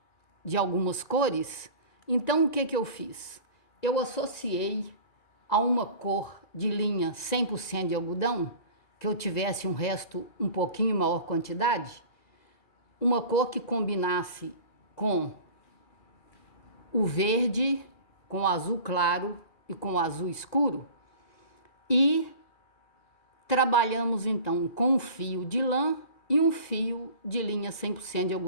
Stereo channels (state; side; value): late; right; 1.9 ms